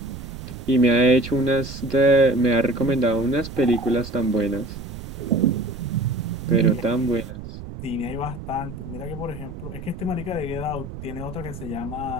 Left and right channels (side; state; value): right; noise; rumble, 11 dB below the sound